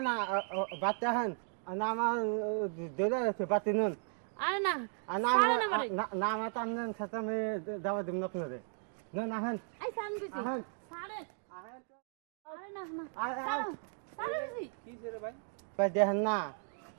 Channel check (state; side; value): silent; left; 54 dB below the other